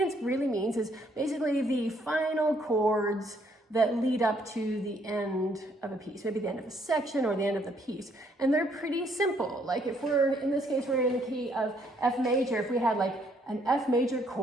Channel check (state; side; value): normal; both; correlation 0.68